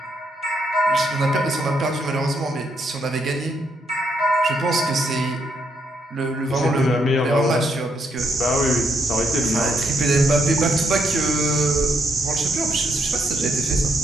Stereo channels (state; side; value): normal; both; correlation 0.75